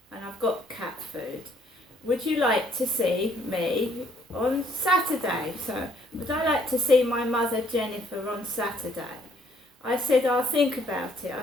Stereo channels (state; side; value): normal; both; correlation 0.65